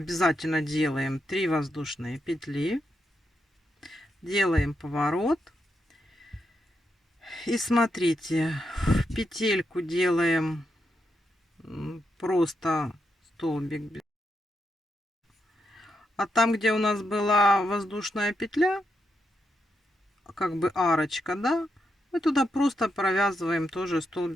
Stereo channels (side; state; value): both; normal; correlation 0.84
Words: делаем 3 воздушные петли. Делаем поворот. И смотрите, в петельку делаем просто столбик. А там, где у нас была воздушная петля, как бы арочка, да, мы туда просто провязываем тоже